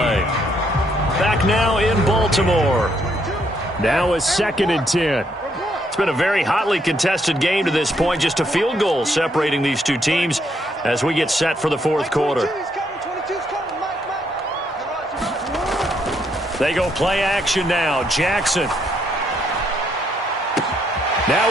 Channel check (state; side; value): normal; both; correlation 0.73